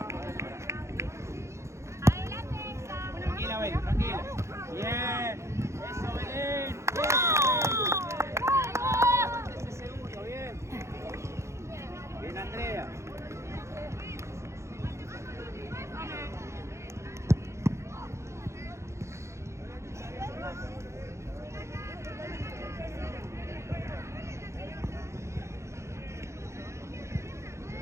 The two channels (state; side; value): late; left; 0.14 ms